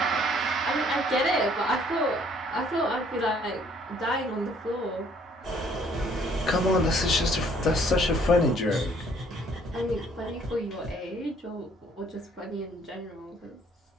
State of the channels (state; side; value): normal; both; correlation 0.61